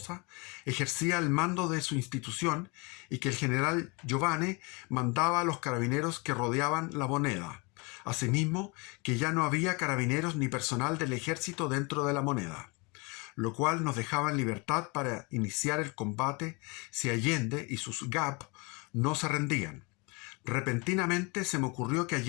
ejercía el mando de su institución y que el general Giovanni mandaba a los carabineros que rodeaban la Moneda. Asimismo, que ya no había carabineros ni personal del ejército dentro de la Moneda, lo cual nos dejaba en libertad para iniciar el combate si Allende y sus GAP no se rendían. Repentinamente se me ocurrió que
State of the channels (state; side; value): quieter; right; 28.7 dB